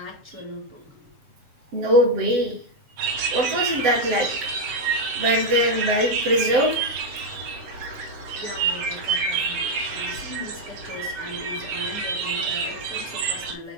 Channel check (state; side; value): late; left; 7.7 ms